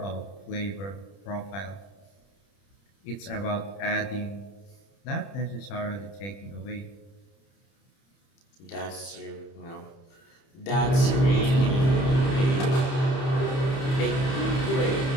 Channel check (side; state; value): right; late; 30 ms